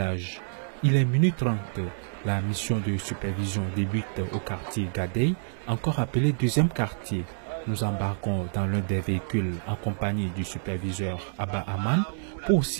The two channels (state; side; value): silent; left; digital silence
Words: Il est minuit 30. La mission de supervision débute au quartier Gadey, encore appelé deuxième quartier. Nous embarquons dans l'un des véhicules en compagnie du superviseur Abba Aman pour